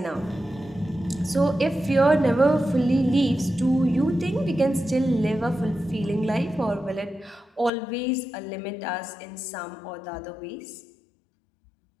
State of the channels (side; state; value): right; drops out; at 7.7 s